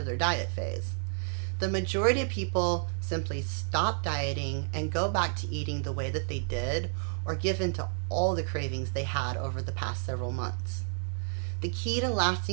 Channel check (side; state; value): left; silent; digital silence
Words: their diet phase. The majority of people simply stop dieting and go back to eating the way that they did, or give in to all the cravings they had over the past several months. The key to